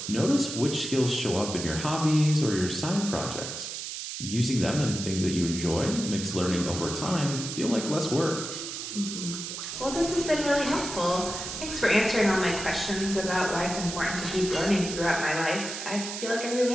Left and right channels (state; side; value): noise; right; hiss, 7 dB below the sound